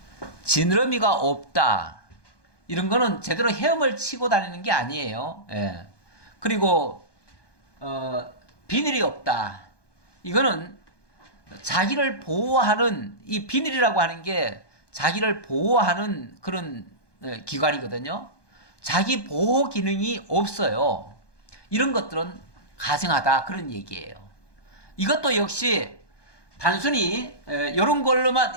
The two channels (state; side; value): late; right; 1.2 ms